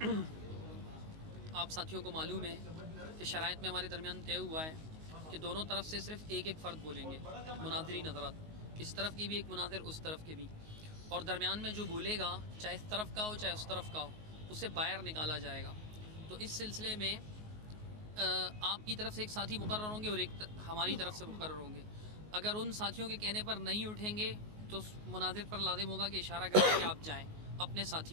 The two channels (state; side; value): late; left; 19 ms